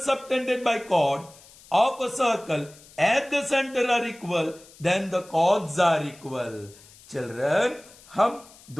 subtended by chord of a circle at the center are equal, then the chords are equal. Children, हम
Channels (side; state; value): left; noise; hiss, 23 dB below the sound